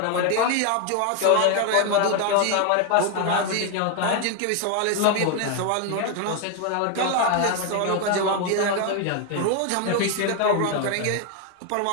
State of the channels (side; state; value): both; different; correlation 0.01